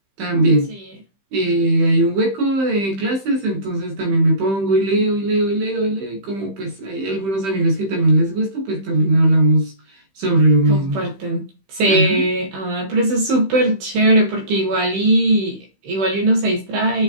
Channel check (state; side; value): late; left; 15 ms